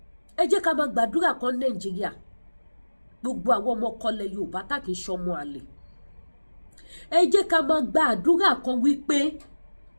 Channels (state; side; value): inverted; both; correlation -1.00